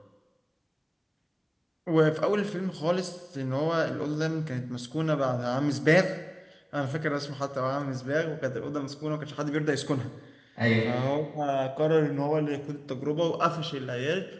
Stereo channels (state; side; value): identical; both; correlation 1.00